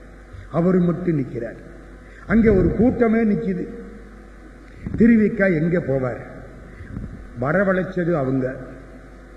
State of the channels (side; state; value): both; identical; correlation 1.00